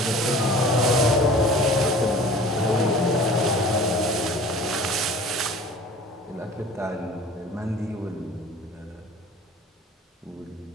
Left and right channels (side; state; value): both; normal; correlation 0.44